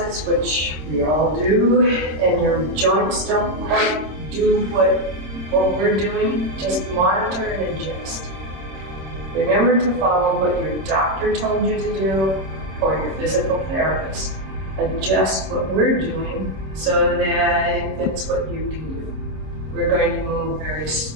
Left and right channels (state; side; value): late; left; 26 ms